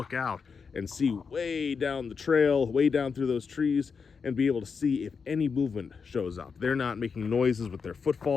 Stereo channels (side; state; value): right; quieter; 5.6 dB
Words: out and see way down the trail, way down through those trees, and be able to see if any movement shows up. They're not making noises with their